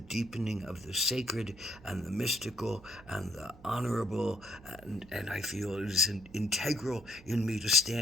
deepening of the sacred and the mystical and the honorable, and I feel it is integral in me to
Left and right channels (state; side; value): noise; right; hum, 21 dB below the sound